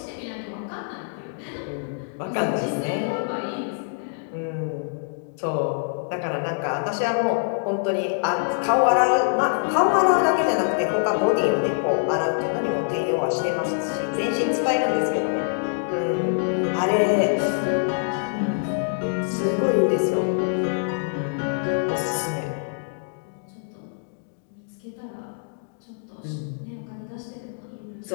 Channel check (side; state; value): right; silent; digital silence